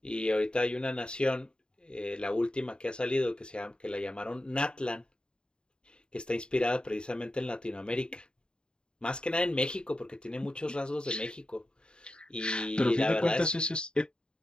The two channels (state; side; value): late; right; 0.050 ms